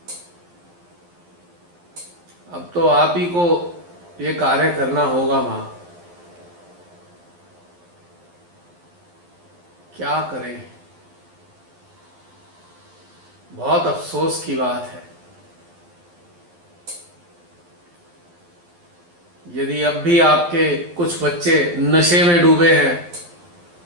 अब तो आप ही को ये कार्य करना होगा मां, क्या करें? बहुत अफसोस की बात है। यदि अब भी आपके कुछ बच्चे नशे में डूबे हैं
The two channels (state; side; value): late; left; 11 ms